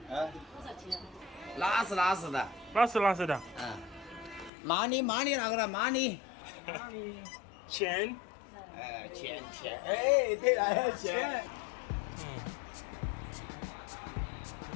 多少钱？拉丝的。拉丝的。money 那个了 money。钱。钱，哎，对了，钱。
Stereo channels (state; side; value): drops out; right; at 4.5 s